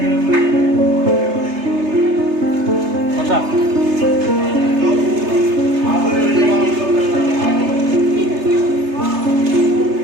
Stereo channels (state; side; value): late; left; 3.3 ms